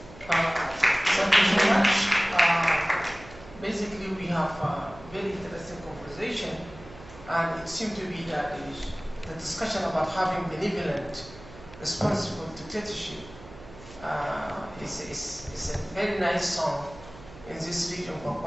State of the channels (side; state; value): right; noise; hum, 18 dB below the sound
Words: Thank you so much. Basically, we have a very interesting conversation, and it seems to be that the discussion about having benevolent, responsible dictatorship is a very nice song in this region for